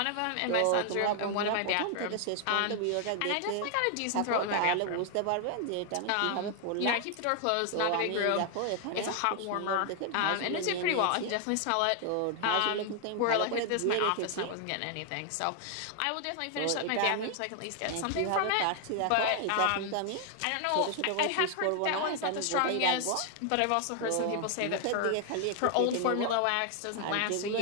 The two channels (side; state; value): both; different; correlation 0.00